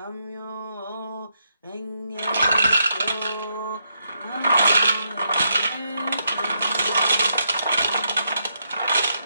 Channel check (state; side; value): inverted; both; correlation -0.80